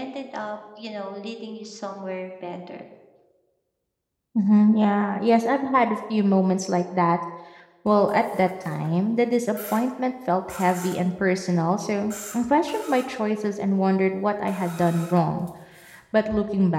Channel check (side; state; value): both; identical; correlation 1.00